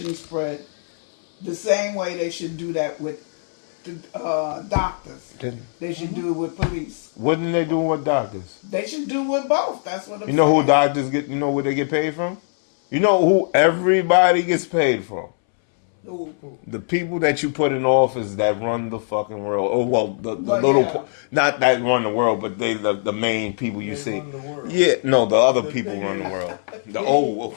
spread. The same way they should do that with the doctors. They should do it with police. What are they doing with doctors? They should do with both. That's what I'm You know saying. who doctors get? You know where they get paid from? You know who everybody gets paid from? Who? The people that you put in office that run the fucking world. Oh well, the Well, little, yeah. not that run the world, but they the main people you They see. run the world. Yeah, no, the other The people thing run the is- world. The old.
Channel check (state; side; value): silent; right; 65 dB below the other